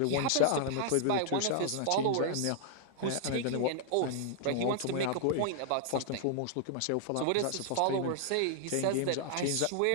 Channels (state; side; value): different; both; correlation -0.01